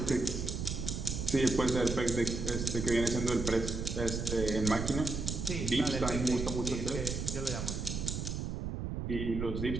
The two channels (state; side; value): noise; right; rumble, 4 dB below the sound